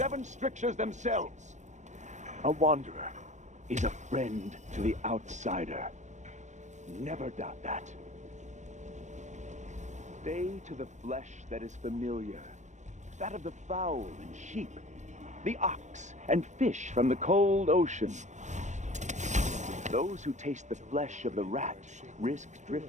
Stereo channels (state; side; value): late; left; 0.34 ms